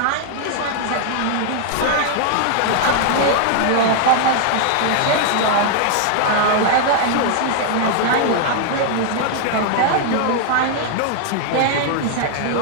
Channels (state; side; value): different; both; correlation 0.00